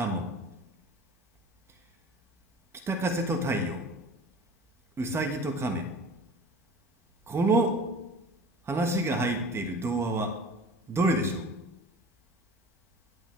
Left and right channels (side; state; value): both; normal; correlation 0.41